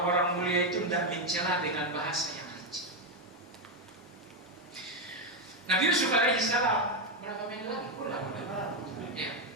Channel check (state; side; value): normal; both; correlation 0.06